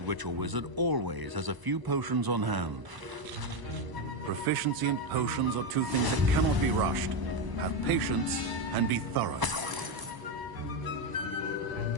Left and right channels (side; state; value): left; late; 1.0 ms